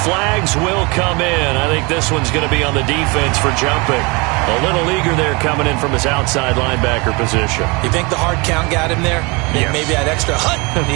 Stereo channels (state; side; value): quieter; left; 27.7 dB